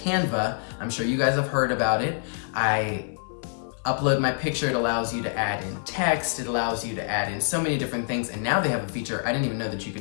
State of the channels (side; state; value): right; silent; 61 dB below the other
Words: I'm sure you guys have heard about it. I upload my picture, it allows you to add in text, it allows you to add in so many different things, and now they have a feature, I didn't even know that you